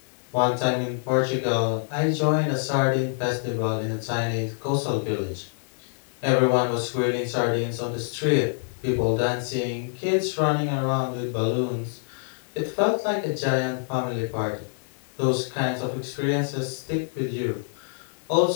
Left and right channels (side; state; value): right; silent; digital silence